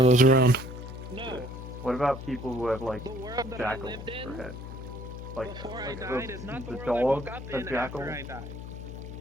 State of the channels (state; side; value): noise; left; hum, 10 dB below the sound